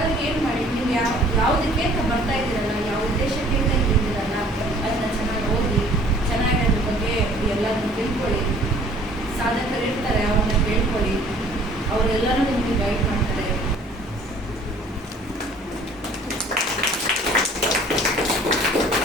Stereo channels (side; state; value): both; normal; correlation 0.54